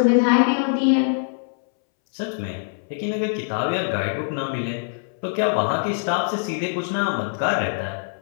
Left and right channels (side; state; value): right; silent; 63 dB below the other